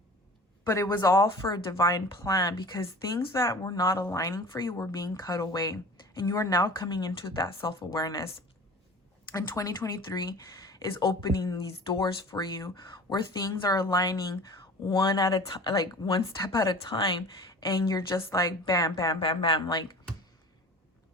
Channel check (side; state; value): both; normal; correlation 0.41